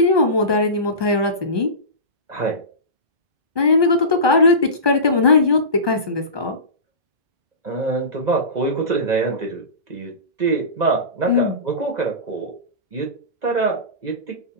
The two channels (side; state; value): left; late; 1.2 ms